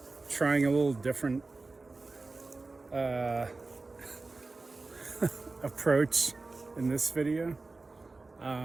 trying a little different approach in this video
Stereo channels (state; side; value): quieter; left; 3.6 dB